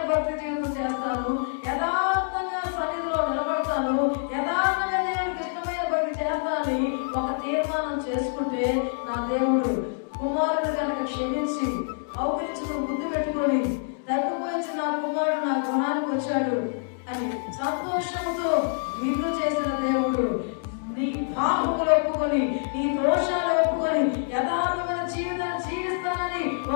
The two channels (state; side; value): silent; right; 61 dB below the other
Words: భక్తి జీవితం చేస్తాను, యథార్థంగా సన్నిధిలో నిలబడతాను, యథార్థంగా దేవుడికి ఇష్టమైన భక్తి చేస్తానని ఒక తీర్మానం చేసుకుంటే నా దేవుడు కుమారుడు కనుక క్షమించి అవకరించుకుని ముద్దు పెట్టుకొని తగ్గిపోయించి నా కుమారుడు నా గృహానికి వచ్చాడు అని సంతోషంతో విందు చేసిన దేవుడు నీ పాపములు ఒప్పుకొని నీ దోషాలు ఒప్పుకొని యథార్థమైన జీవితాన్ని జీవిస్తానని